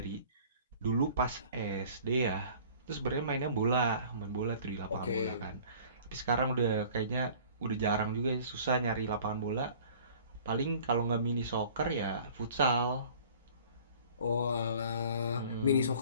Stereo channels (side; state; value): both; inverted; correlation -0.48